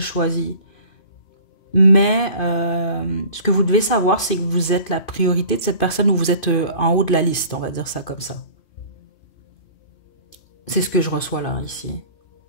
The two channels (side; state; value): right; late; 2.5 ms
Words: Mais ce que vous devez savoir, c'est que vous êtes la priorité de cette personne ou vous êtes en haut de la liste, on va dire ça comme ça. C'est ce que je reçois là, ici.